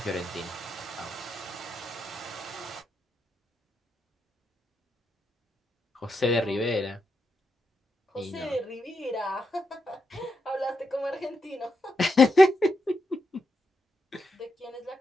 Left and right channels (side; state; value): both; normal; correlation 0.84